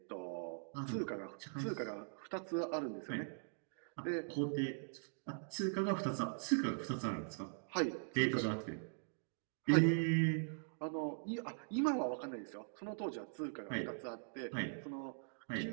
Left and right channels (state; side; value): silent; left; digital silence